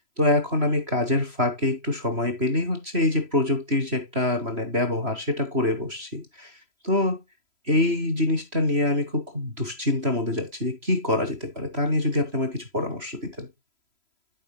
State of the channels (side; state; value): left; late; 3.0 ms